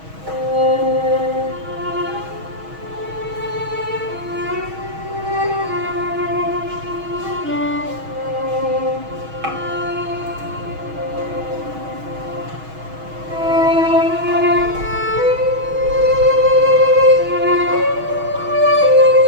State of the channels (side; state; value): left; late; 6.3 ms